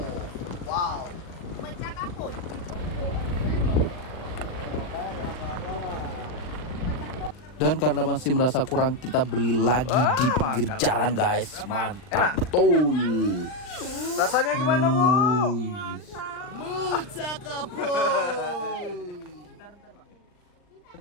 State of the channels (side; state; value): right; late; 39 ms